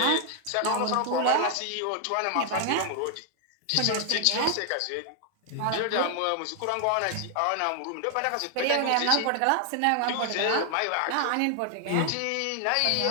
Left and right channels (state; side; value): different; both; correlation 0.00